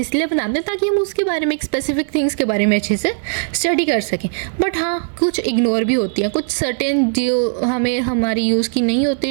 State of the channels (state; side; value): silent; left; 60 dB below the other